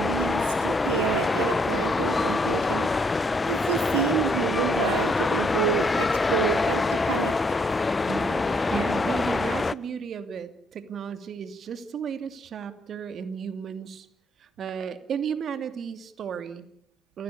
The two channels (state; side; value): normal; both; correlation 0.70